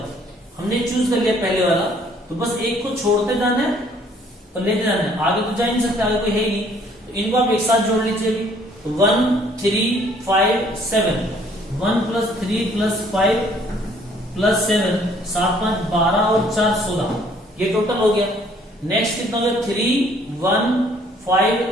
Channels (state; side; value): normal; both; correlation 0.61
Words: हमने चूज कर लिया पहले वाला, तो बस एक को छोड़ते जाना है और लेते जाना है, आगे तो जा नहीं सकते, आगे कोई है ही नहीं। तो इनको आप एक साथ जोड़ लीजिए। 1, 3, 5, 7, 1 + 3 + 5 + 7, 7, 5, 12 और 4, 16, ये टोटल हो गया। नेक्स्ट कितना हो गया? 3, 1, 5,